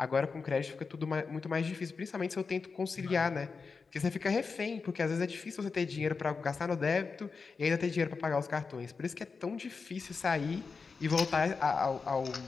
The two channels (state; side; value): quieter; right; 4.9 dB